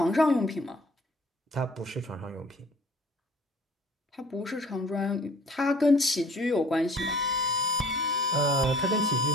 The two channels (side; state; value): both; normal; correlation 0.52